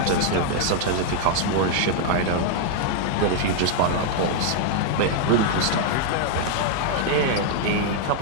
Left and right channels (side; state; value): both; different; correlation 0.00